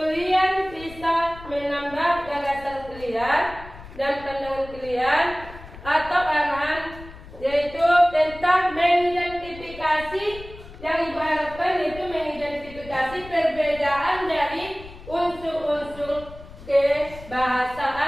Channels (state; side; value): noise; left; rumble, 17 dB below the sound